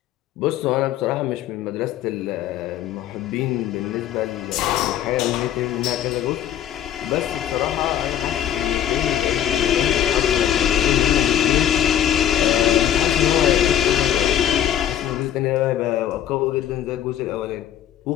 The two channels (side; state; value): right; quieter; 10.8 dB